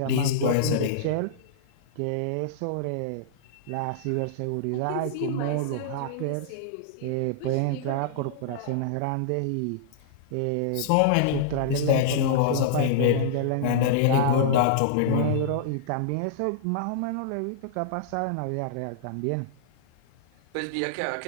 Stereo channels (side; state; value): both; different; correlation -0.02